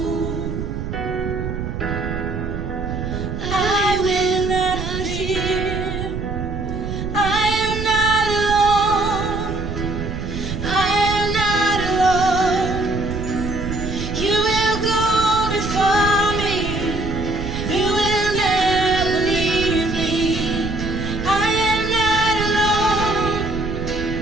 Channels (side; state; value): right; noise; rumble, 5 dB below the sound